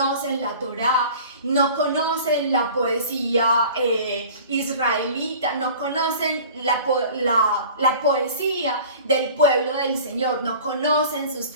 la Torá, no conocen la poesía israelita, no conocen la poesía del pueblo del Señor, no conocen sus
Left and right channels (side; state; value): both; inverted; correlation -0.44